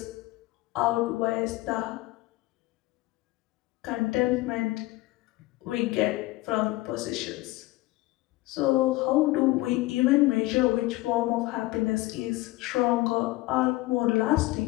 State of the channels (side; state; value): right; quieter; 19.3 dB